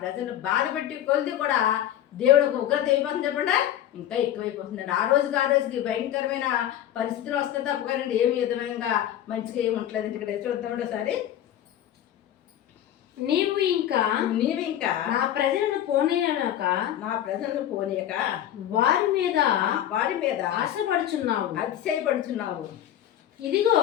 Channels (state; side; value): quieter; right; 11.6 dB